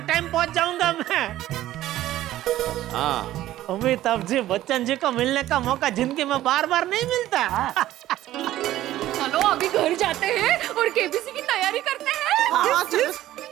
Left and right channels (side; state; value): left; quieter; 14.2 dB